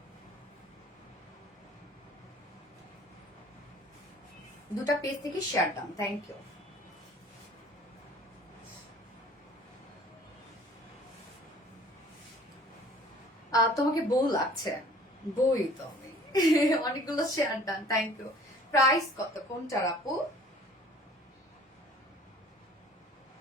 দুটা পেজ থেকে শেয়ার দাম, থ্যাংক ইউ। তোমাকে বউ লাগছে, বই তো আমি। অনেকগুলো শেয়ার দাম, থ্যাংক ইউ। প্রাইস কত কোনটার আপু?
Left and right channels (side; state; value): both; normal; correlation 0.51